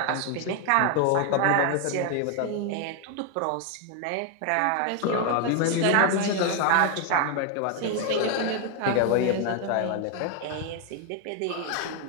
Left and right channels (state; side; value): different; both; correlation 0.01